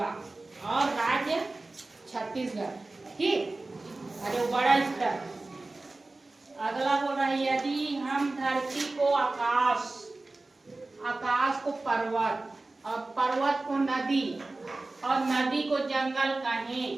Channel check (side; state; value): left; quieter; 3.1 dB